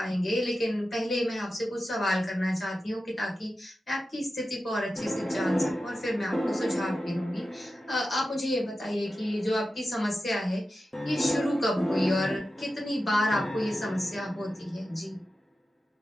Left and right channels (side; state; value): both; normal; correlation 0.92